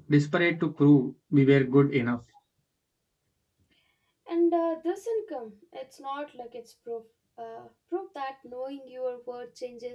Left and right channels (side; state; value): both; identical; correlation 1.00